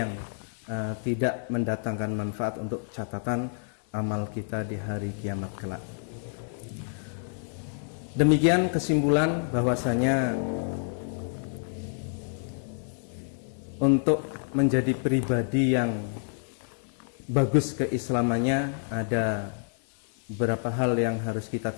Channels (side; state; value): right; silent; 59 dB below the other